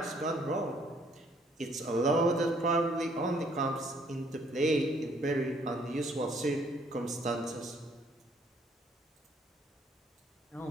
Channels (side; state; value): both; normal; correlation 0.64